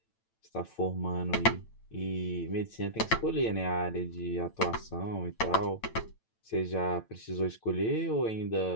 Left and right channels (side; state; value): right; late; 9.0 ms